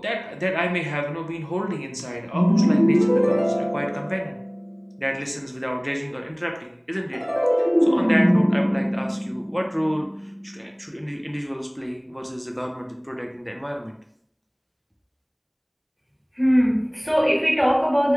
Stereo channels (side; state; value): both; identical; correlation 1.00